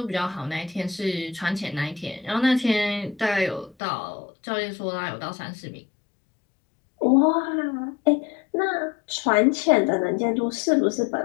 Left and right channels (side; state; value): right; drops out; at 3.8 s